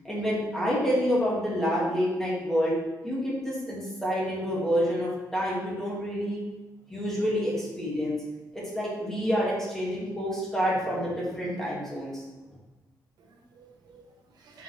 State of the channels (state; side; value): normal; both; correlation 0.77